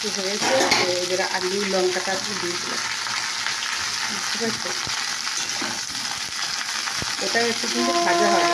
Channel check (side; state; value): both; identical; correlation 1.00